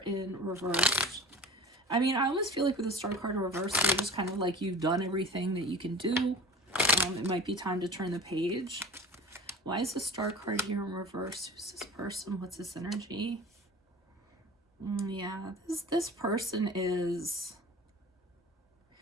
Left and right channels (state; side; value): normal; both; correlation 0.39